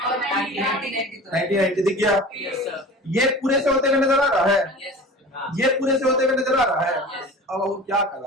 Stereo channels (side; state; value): both; normal; correlation 0.38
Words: 90 दिख गया, ये पूरे से होते हुए नजर आ रहा है, ये पूरे से होते हुए नजर आ रहा है। अब वो क्या